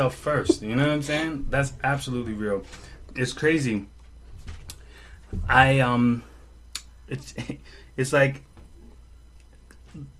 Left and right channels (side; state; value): both; identical; correlation 1.00